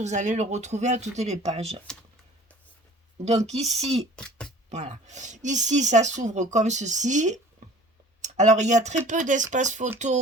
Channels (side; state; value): both; normal; correlation 0.47